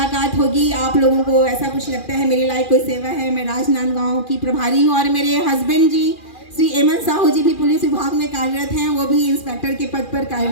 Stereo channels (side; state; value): right; late; 2.4 ms